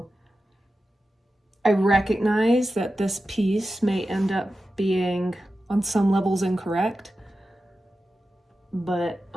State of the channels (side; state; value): both; normal; correlation 0.92